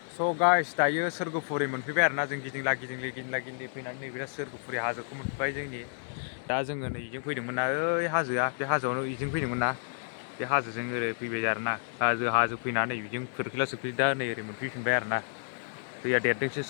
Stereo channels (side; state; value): right; silent; digital silence